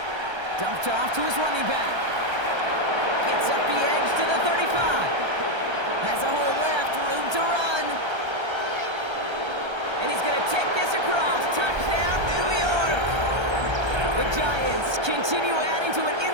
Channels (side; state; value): left; late; 1.3 ms